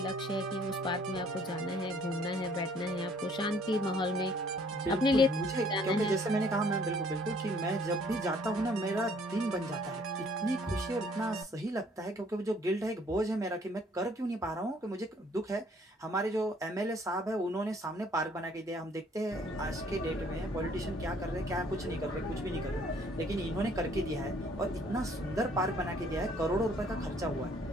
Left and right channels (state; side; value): normal; both; correlation 0.60